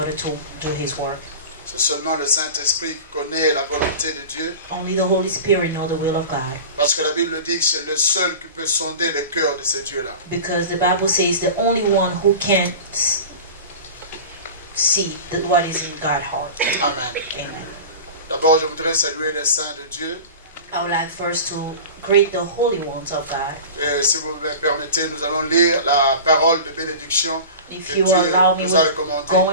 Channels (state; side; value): inverted; both; correlation -0.34